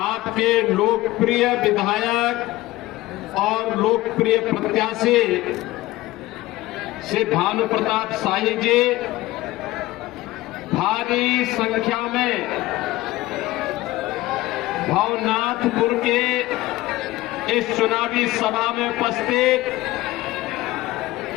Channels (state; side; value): quieter; right; 18.0 dB